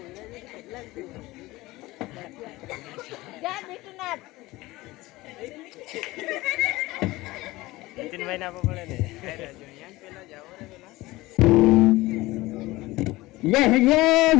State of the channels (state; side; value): quieter; right; 19.5 dB